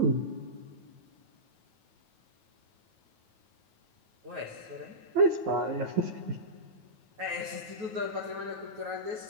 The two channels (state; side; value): late; left; 9.2 ms